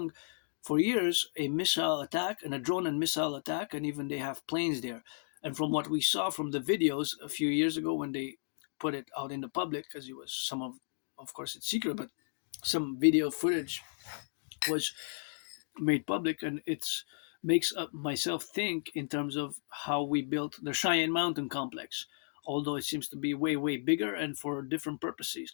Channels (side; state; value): right; silent; digital silence